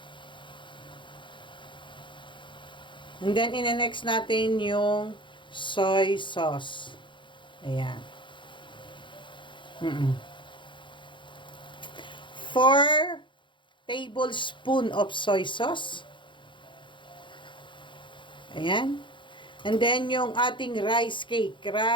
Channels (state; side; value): late; right; 0.23 ms